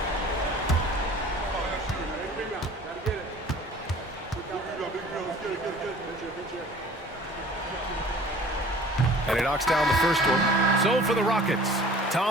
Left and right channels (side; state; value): both; normal; correlation 0.48